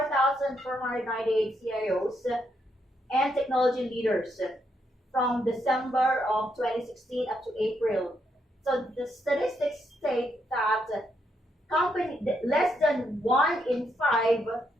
CIOs and technology leaders from December of 2016 up to April. So the statistics state that less than 1 in 5,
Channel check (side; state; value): both; normal; correlation 0.77